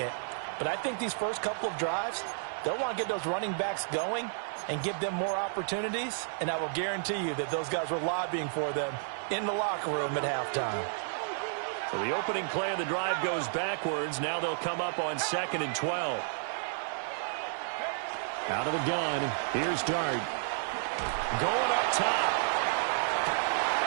but I think these first couple of drives, they'll want to get those running backs going and give them more opportunities, and I will guarantee you that those guys were lobbying for them in the locker room at halftime. So the opening play of the drive goes backwards. Now they'll come up on 2nd and 12. Out of the gun. Here's Dart. Going up top.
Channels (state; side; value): silent; left; digital silence